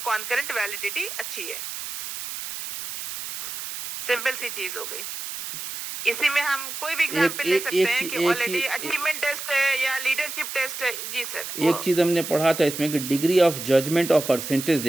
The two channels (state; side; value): noise; right; hiss, 7 dB below the sound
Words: कॉन्करेंट वैलिडिटी अच्छी है। सिंपल सी चीज हो गई। इसी में हम कोई भी एग्जांपल ले सकते हैं कि ऑलरेडी अचीवमेंट टेस्ट है या लीडरशिप टेस्ट है। जी सर। एक चीज़ हमने पढ़ा था इसमें कि डिग्री ऑफ जजमेंट और परसेंटेज